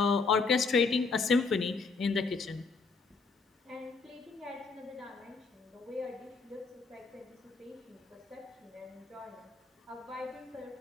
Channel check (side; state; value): right; quieter; 4.4 dB